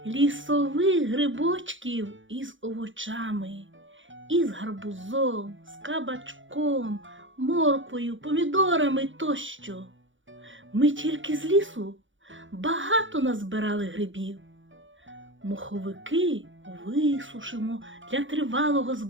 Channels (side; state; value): left; late; 0.56 ms